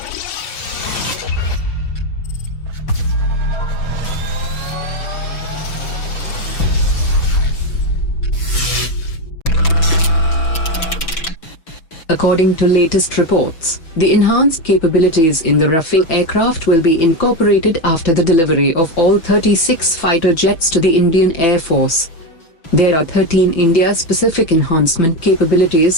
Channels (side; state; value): right; late; 6.1 ms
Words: According to latest reports, the enhanced capabilities in the Rafale aircraft will be incorporated after the delivery of all 36 fighter jets to the Indian Air Force. There are 13 India-specific enhancement capabilities